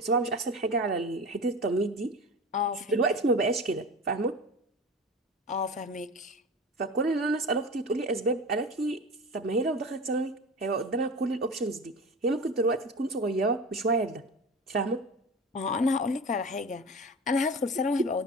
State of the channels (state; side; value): normal; both; correlation 0.31